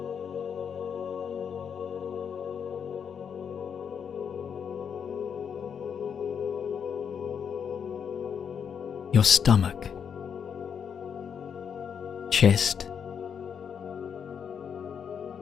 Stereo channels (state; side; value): quieter; right; 7.4 dB